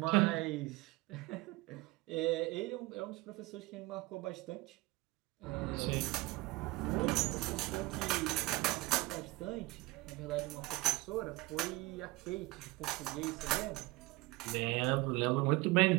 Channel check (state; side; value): quieter; left; 21.7 dB